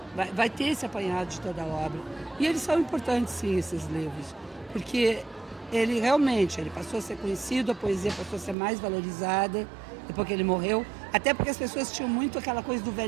Vai ter esse apanhado de toda a obra. E eles são importantes, sim, esses livros, porque ele passou a ser conhecido, a poesia passou a ser mais valorizada depois que ele morreu, até porque as pessoas tinham muito aquela coisa do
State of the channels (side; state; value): left; drops out; at 8.6 s